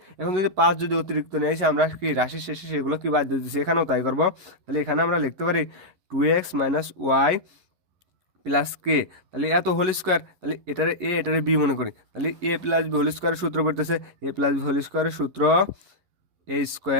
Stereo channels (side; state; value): left; late; 11 ms